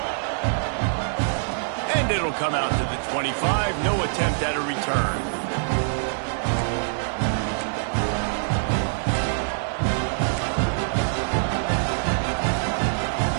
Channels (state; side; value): silent; left; digital silence